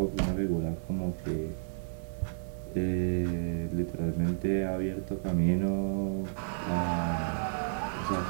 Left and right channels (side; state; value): left; silent; digital silence